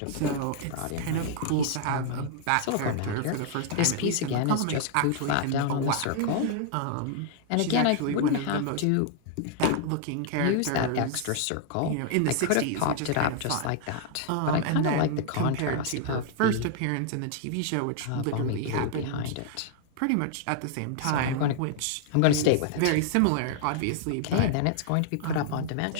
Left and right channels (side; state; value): both; different; correlation 0.00